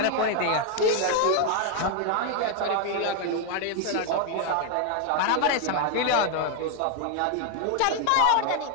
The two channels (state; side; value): different; both; correlation 0.01